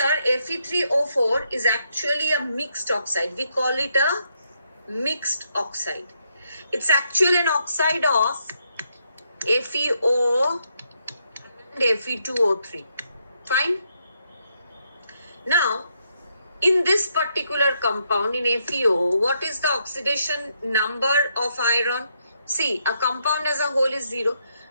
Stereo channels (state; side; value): inverted; both; correlation -0.77